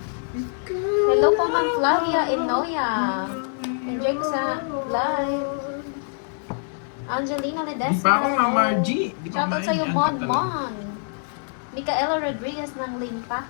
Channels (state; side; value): silent; right; digital silence